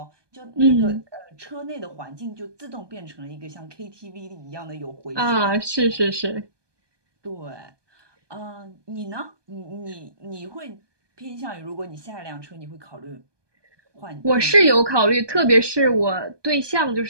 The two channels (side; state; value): left; late; 1.2 ms